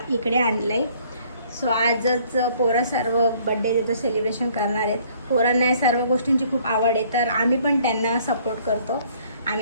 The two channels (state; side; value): inverted; both; correlation -0.60